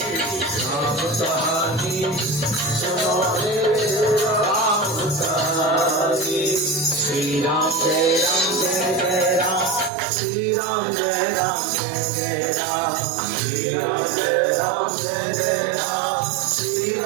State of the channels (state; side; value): drops out; left; at 9.9 s